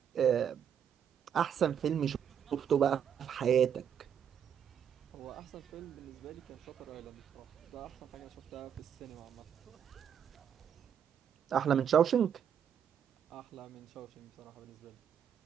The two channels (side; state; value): left; quieter; 8.4 dB